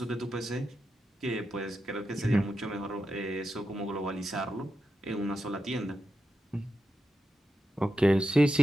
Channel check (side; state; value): both; normal; correlation 0.88